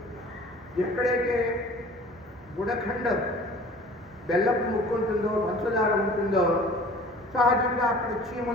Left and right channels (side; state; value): both; normal; correlation 0.46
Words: ఎక్కడైతే గుడఖండం బెల్లపు ముక్కు ఉంటుందో, పంచదార ఉంటుందో, సహజంగా అక్కడ